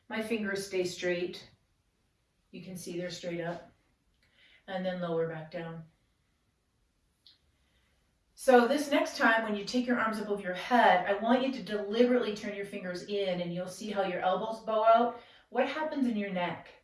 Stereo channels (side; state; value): both; identical; correlation 1.00